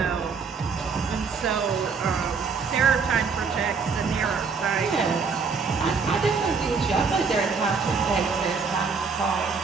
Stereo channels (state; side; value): quieter; left; 5.2 dB